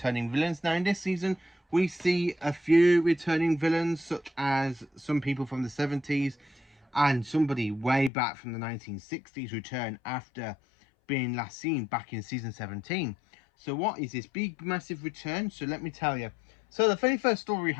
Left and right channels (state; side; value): drops out; right; at 8.1 s